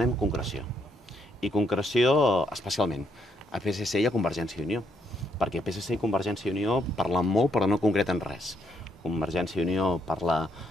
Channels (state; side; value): normal; both; correlation 0.74